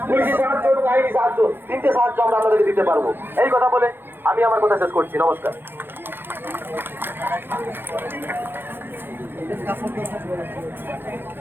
পুলিশি সাহায্য এবং আইনি সাহায্য। 3টে সাহায্য আমরা আপনাদেরকে দিতে পারবো। এই কথা বলে আমি আমার কথা শেষ করছি। নমস্কার।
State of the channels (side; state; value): left; late; 0.10 ms